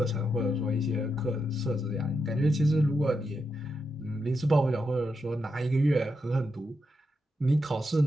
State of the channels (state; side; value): normal; both; correlation 0.85